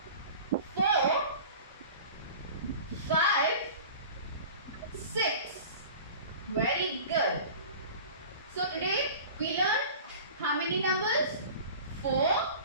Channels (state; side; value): inverted; both; correlation -0.40